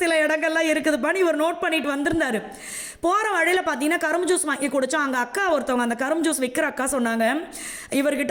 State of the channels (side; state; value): both; identical; correlation 1.00